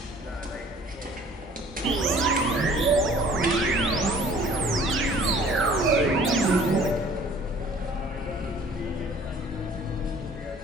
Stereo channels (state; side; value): normal; both; correlation 0.52